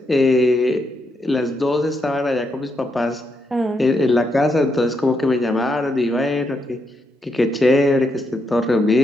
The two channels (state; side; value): normal; both; correlation 0.80